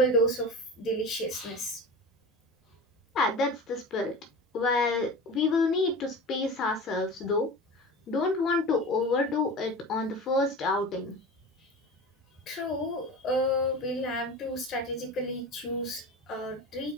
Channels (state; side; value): normal; both; correlation 0.31